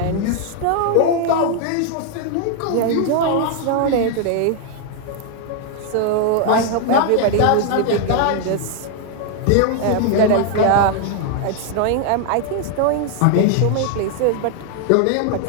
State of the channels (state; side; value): different; both; correlation 0.00